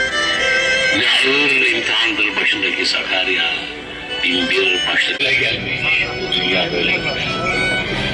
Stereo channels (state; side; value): identical; both; correlation 1.00